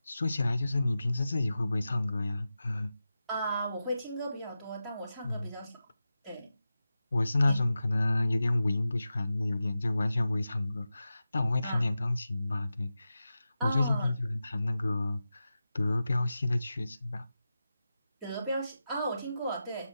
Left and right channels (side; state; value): both; inverted; correlation -0.92